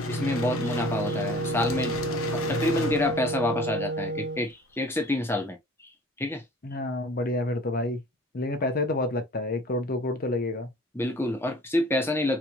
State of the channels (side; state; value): both; normal; correlation 0.48